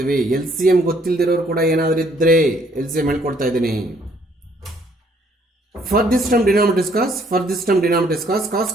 L C M ಗೊತ್ತಿಲ್ದಿರೋರು ಕೂಡ ಏನಾದರೂ ಇದ್ರೆ ಎಲ್ ಸಿ ಎಮ್ ಹೇಳ್ಕೊಡ್ತಾ ಇದ್ದೀನಿ. For this term denominator is cos, for this term denominator is cos.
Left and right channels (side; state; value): both; normal; correlation 0.65